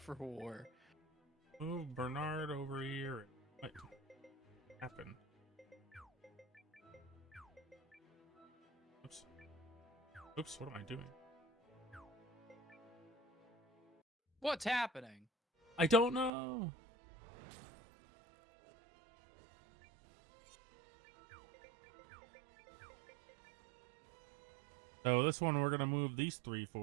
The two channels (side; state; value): left; drops out; at 16.3 s